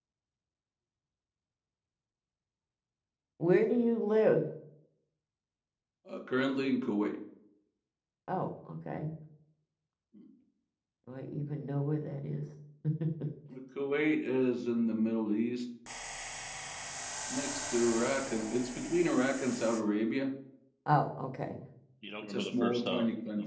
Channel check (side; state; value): both; identical; correlation 1.00